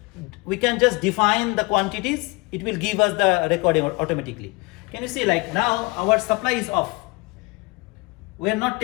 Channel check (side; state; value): right; quieter; 25.7 dB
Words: can just define the quantities. It will give us the recording automatically. Can you see, like now our supply is off. We are not